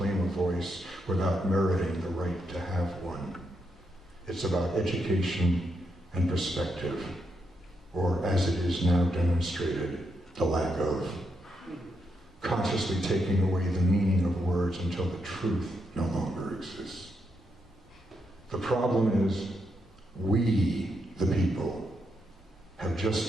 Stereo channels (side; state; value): both; normal; correlation 0.81